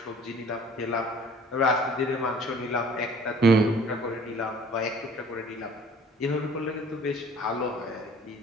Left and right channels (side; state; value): both; normal; correlation 0.51